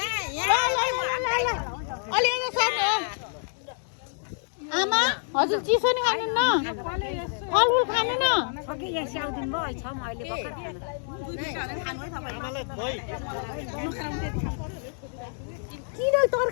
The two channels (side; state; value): right; silent; digital silence